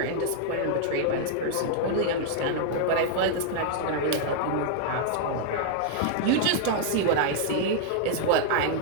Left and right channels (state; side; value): different; both; correlation 0.00